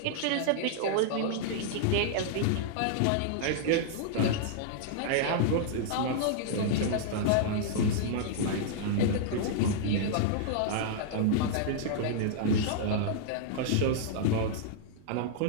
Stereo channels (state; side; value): different; both; correlation -0.01